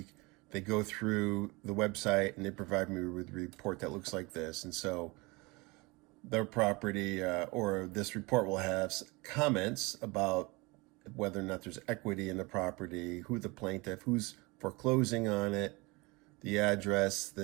They go through the website and they provide me with a report that looks like this. And so their property or this report will have comments about whether or not there's equity in the property, who the plaintiff, who's foreclosing on it, the address,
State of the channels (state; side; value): quieter; left; 25.3 dB